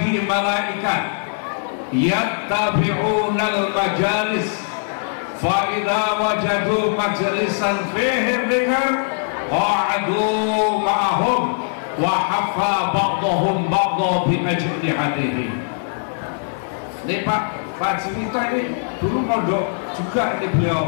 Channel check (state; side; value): silent; right; digital silence